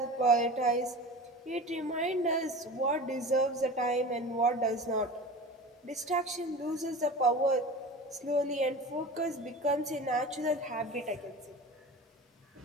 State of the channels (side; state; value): both; normal; correlation 0.34